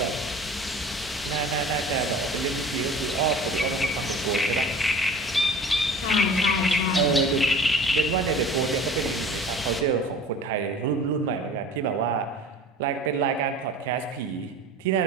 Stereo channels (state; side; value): normal; both; correlation 0.42